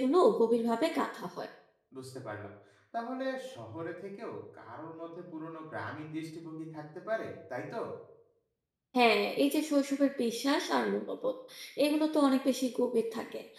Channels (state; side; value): identical; both; correlation 1.00